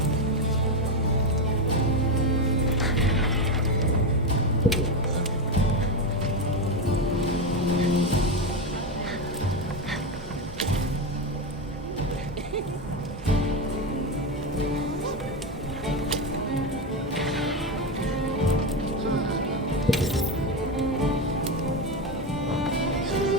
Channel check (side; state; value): both; normal; correlation 0.13